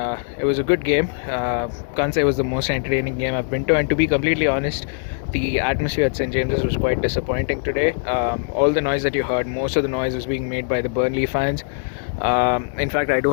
it was a good game. Can't say it was the most entertaining game I've been to, and to be completely honest, the atmosphere at St James's was quite disappointing today. All the noise that you heard, most of the noise was being made by the Burnley fans. In fact, I do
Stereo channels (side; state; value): right; silent; 59 dB below the other